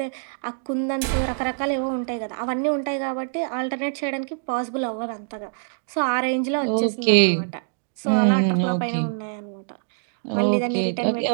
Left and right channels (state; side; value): silent; left; digital silence